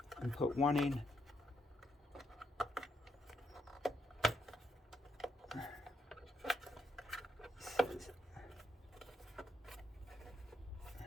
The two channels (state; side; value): normal; both; correlation 0.79